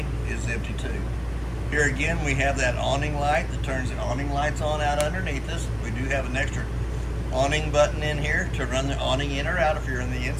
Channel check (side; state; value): both; identical; correlation 1.00